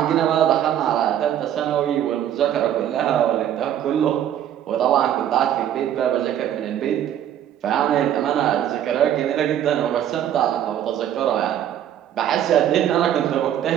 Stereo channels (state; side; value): quieter; left; 10.6 dB